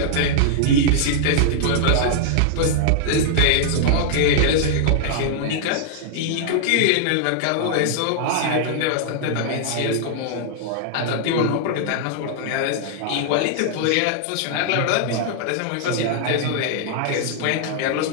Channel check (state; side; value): different; both; correlation -0.01